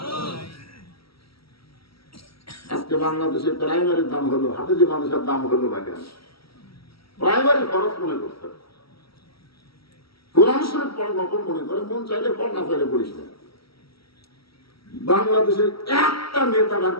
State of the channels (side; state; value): right; late; 0.75 ms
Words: আজকে বাংলাদেশে প্রাইমারির দাম হলো, হাফেজি মানুষের দাম হলো না কেন? প্রাইমারি খরচ মনে করতে, কোরআন শরীফ পড় নকল মনে করে, মন চাইলে পড়, না চাইলে পড়িস না। বাংলাদেশের একটা নেতা বার